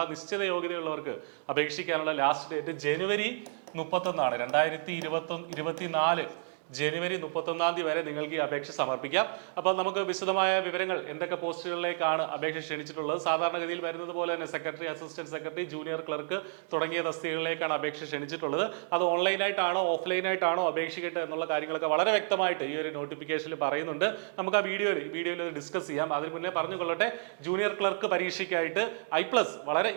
നിശ്ചിത യോഗ്യതയുള്ളവർക്ക് അപേക്ഷിക്കാനുള്ള ലാസ്റ്റ് ഡേറ്റ് ജനുവരി 31 2024 ജനുവരി 31 വരെ നിങ്ങൾക്ക് ഈ അപേക്ഷ സമർപ്പിക്കാം. അപ്പോൾ നമുക്ക് വിശദമായ വിവരങ്ങൾ എന്തൊക്കെ പോസ്റ്റുകളിലേക്കാണ് അപേക്ഷ ക്ഷണിച്ചിട്ടുള്ളത്. സാധാരണഗതിയിൽ വരുന്നത് പോലെ തന്നെ secretary, assistant secretary, junior clerk തുടങ്ങിയ തസ്തികകളിലേക്കാണ് അപേക്ഷ ക്ഷണിച്ചിട്ടുള്ളത്. അത് ഓൺലൈനായിട്ടാണോ ഓഫ്ലൈനായിട്ടാണോ അപേക്ഷിക്കട്ടെ എന്നുള്ള കാര്യങ്ങളൊക്കെ വളരെ വ്യക്തമായിട്ട് ഈ ഒരു നോട്ടിഫിക്കേഷനിൽ പറയുന്നുണ്ട്. നമുക്ക് ആ വീഡിയോയിൽ ഡിസ്കസ് ചെയ്യാം. അതിന് മുന്നേ പറഞ്ഞുകൊള്ളട്ടെ, ജൂനിയർ ക്ലർക്ക് പരീക്ഷയ്ക്കായിട്ട് I+ വളരെ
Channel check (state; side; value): silent; left; digital silence